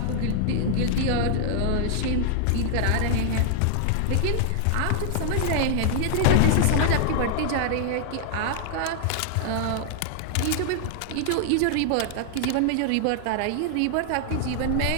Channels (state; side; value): different; both; correlation 0.00